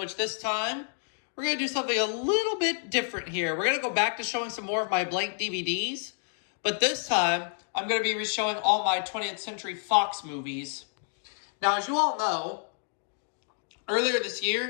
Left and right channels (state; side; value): silent; right; 58 dB below the other